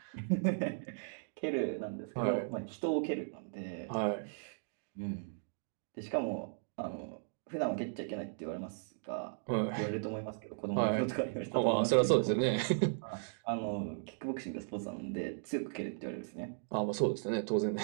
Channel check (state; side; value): silent; left; digital silence